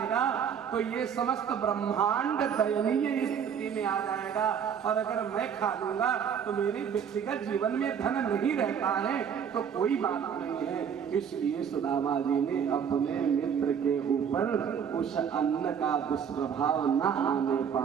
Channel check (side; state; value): left; quieter; 7.6 dB